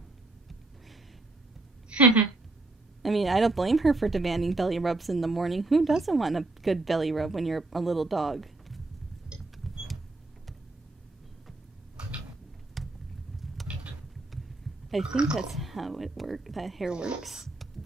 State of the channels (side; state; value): left; quieter; 3.0 dB